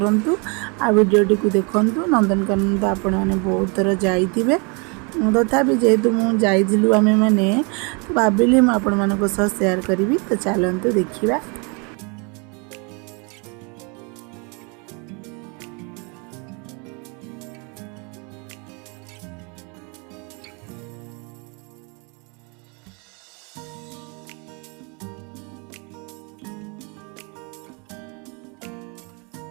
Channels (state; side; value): quieter; left; 32.7 dB